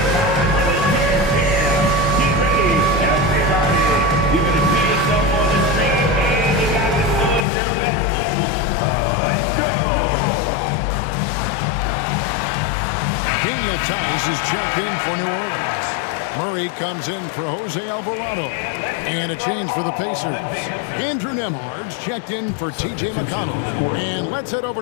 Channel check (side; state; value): right; drops out; at 7.5 s